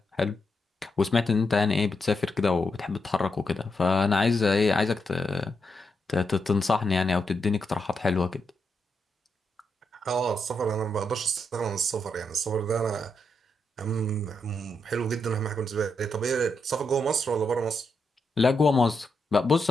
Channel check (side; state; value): both; normal; correlation 0.83